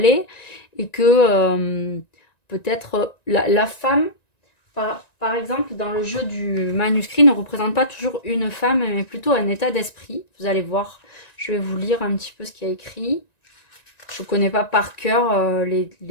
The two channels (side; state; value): right; late; 1.9 ms